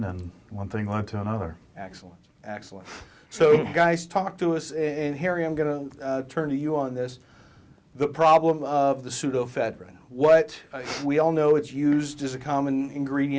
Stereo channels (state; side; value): identical; both; correlation 1.00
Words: and one thing led to another. Excellent, excellent. So guys, talk to us, and Harry, I'm going to turn to you on this. The problem of the pseudoephedrine. What, we all know it's used as a common